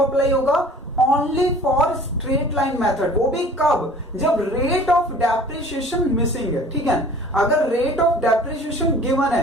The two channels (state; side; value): normal; both; correlation 0.47